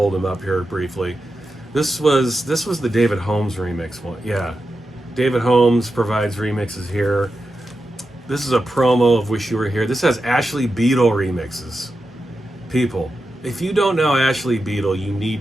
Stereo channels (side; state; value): both; normal; correlation 0.90